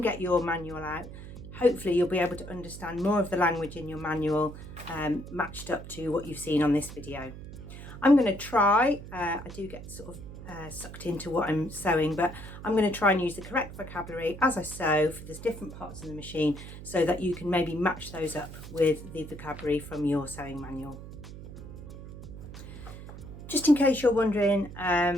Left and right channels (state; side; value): noise; right; hum, 13 dB below the sound